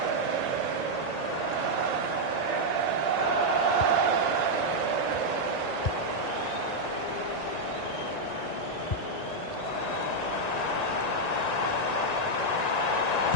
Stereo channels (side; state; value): right; late; 1.9 ms